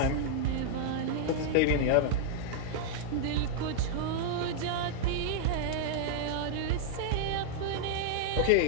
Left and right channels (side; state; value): both; different; correlation -0.01